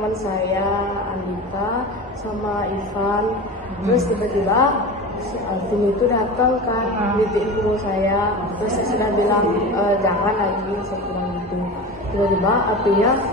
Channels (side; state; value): both; normal; correlation 0.30